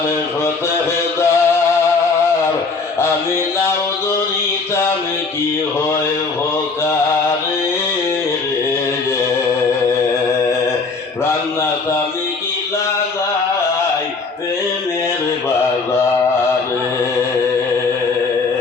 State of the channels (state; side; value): quieter; right; 4.3 dB